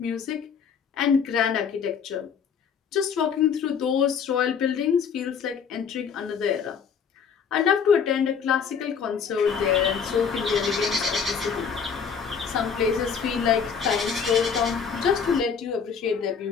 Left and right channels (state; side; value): quieter; right; 6.6 dB